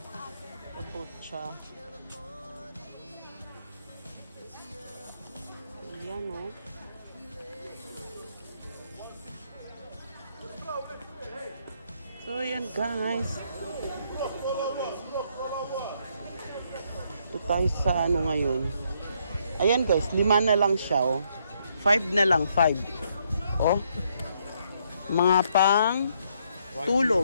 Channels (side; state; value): both; inverted; correlation -0.72